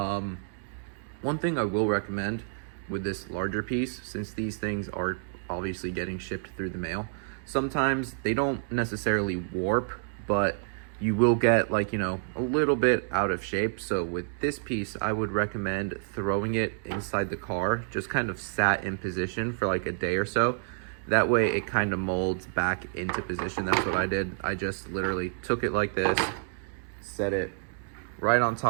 thing I will recommend with this larger piece, since these things are obviously getting shipped through the mail, sometimes they don't necessarily warp, but you will get, like, you know, a little bit out of shape. So with this piece, I would recommend throwing it inside the car, just kind of sat in position for like a day or so. That way it kind of molds back into position. That's what I did. I just literally took it like this, set it right on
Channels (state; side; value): silent; left; digital silence